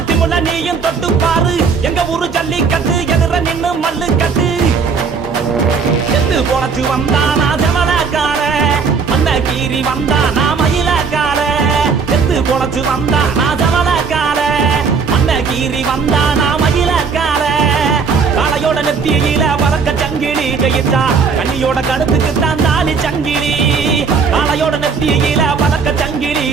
திமுல நீயும் தொட்டு பாரு எங்க ஊரு ஜல்லிக்கட்டு எதிர நின்னு மல்லு கட்டு செத்து பொழைச்சு வந்தானா ஜமலக்கார மண்ண கீறி வந்தானா மயிலக்கார செத்து பொழைச்சு வந்தானா ஜமலக்கார மண்ண கீறி வந்தானா மயிலக்கார காலையோட நெத்தியில பறக்க சங்கிலி ஜெயிச்சா கண்ணியோட கழுத்துக்கு தான் தாலி சங்கிலி காலையோட நெத்தியில பறக்க சங்கிலி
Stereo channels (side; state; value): left; quieter; 5.4 dB